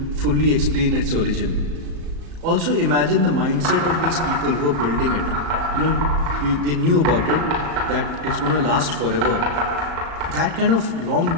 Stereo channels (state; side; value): late; left; 36 ms